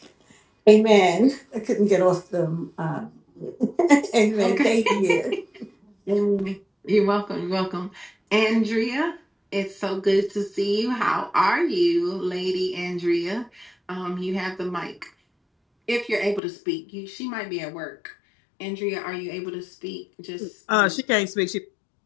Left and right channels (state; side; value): drops out; right; at 16.4 s